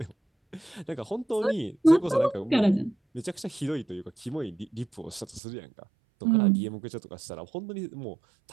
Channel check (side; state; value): left; drops out; at 5.4 s